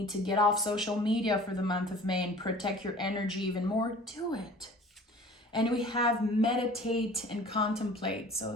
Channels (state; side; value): normal; both; correlation 0.46